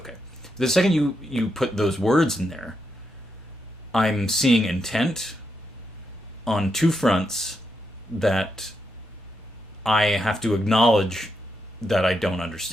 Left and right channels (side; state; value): both; normal; correlation 0.83